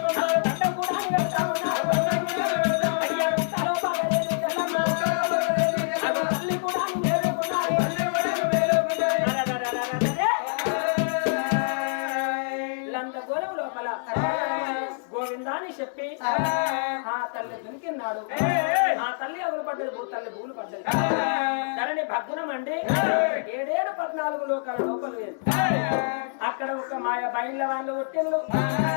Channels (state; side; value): silent; right; 61 dB below the other